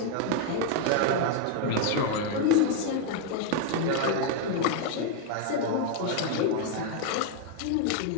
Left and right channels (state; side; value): different; both; correlation 0.01